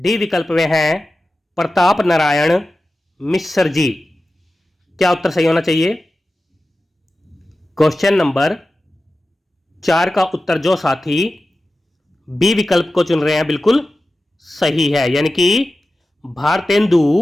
विकल्प में है प्रताप नारायण मिश्र जी। क्या उत्तर सही होना चाहिए? क्वेश्चन नंबर 4 का उत्तर जो साथी बी विकल्प को चुन रहे हैं बिल्कुल सही है, यानी कि भारतेंदु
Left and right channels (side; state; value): both; normal; correlation 0.94